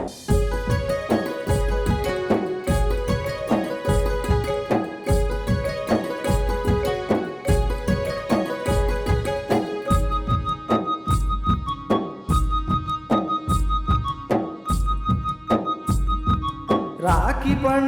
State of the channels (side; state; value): both; identical; correlation 1.00